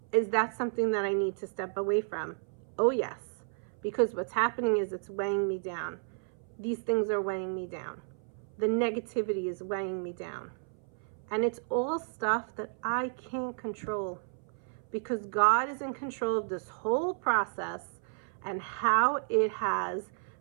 Is that something that I need to step away from? Oh yes, because what's happening is it's weighing me down. These things are weighing me down. The negativity is weighing me down. And it's all stuff that I can't control, because God is in control of this whole process and how it has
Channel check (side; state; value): left; silent; 56 dB below the other